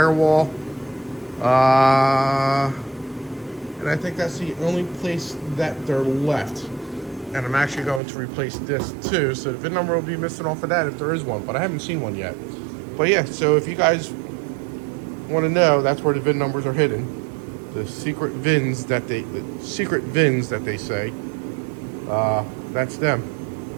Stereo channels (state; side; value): drops out; left; at 8.0 s